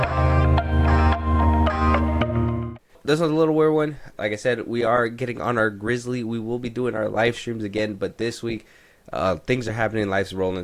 This was a little weird one. Like I said, we are getting on our Grizzly. We will be doing our live streams again, but this week, things are happening, life's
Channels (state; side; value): identical; both; correlation 1.00